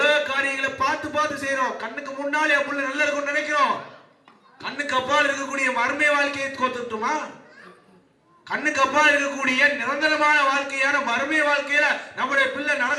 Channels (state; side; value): identical; both; correlation 1.00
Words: காரியங்களை பார்த்து செய்யறோம். கண்ணுக்கு முன்னாலே என் புள்ள நல்லா இருக்கும்னு நினைக்கிறோம். கண்ணுக்கு அப்பால் இருக்கக்கூடிய மர்ம வாழ்க்கையை கோத்துட்டுமா? கண்ணுக்கு அப்பால் இருக்கக்கூடிய நிரந்தரமான வாழ்க்கையான மர்ம வாழ்க்கையில நம்முடைய பிள்ளை